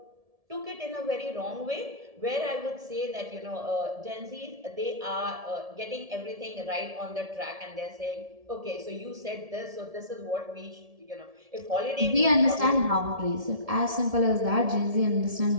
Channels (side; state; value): left; late; 1.7 ms